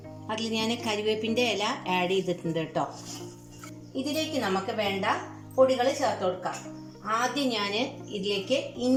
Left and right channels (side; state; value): both; identical; correlation 1.00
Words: അതിൽ ഞാൻ കരിവേപ്പിൻ്റെ ഇല ആഡ് ചെയ്തിട്ടുണ്ട് കേട്ടോ. ഇതിലേക്ക് നമുക്ക് വേണ്ട പൊടികൾ ചേർത്ത് കൊടുക്കാം. ആദ്യം ഞാൻ ഇതിലേക്ക്